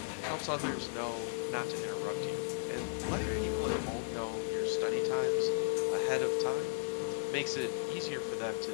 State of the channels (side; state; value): right; silent; digital silence